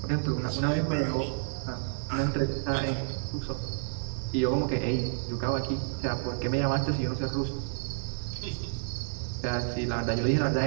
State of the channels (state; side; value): silent; left; digital silence